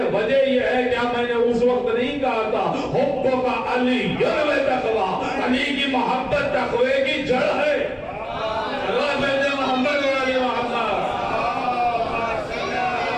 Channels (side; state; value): both; identical; correlation 1.00